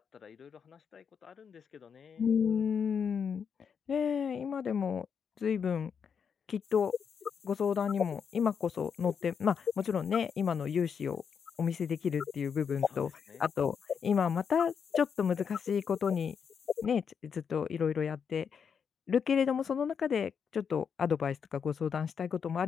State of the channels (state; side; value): quieter; right; 6.8 dB